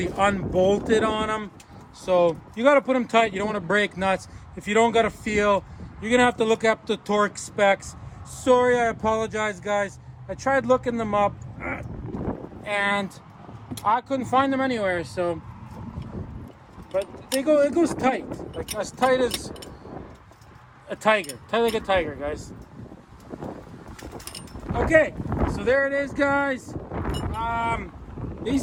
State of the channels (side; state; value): both; identical; correlation 1.00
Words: unbolted on them. So you got to put them tight. You don't want to break nuts. If you don't got a feel, you're going to have to look up the torque specs. Sorry, I apologize, guys. I tried looking them up, and I couldn't find them anywhere. So, but it goes tight, like as tight as a tiger. Tight like a tiger, guys. Okay, so there it is, guys.